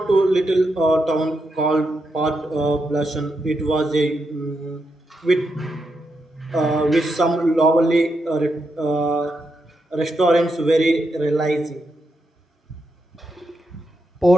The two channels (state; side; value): normal; both; correlation 0.84